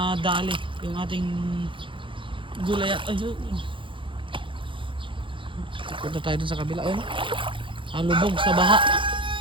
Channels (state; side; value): late; left; 0.25 ms